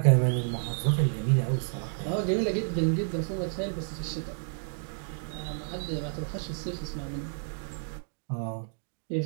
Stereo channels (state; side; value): silent; left; digital silence